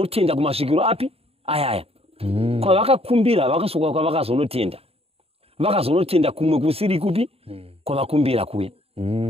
kumasvikiro api ayaya. Kwavakakumbira vakasoka kwavakazonotenda. Vakazonotenda kumwe kusiri kupi kwavakumbira kuya.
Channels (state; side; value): late; left; 0.28 ms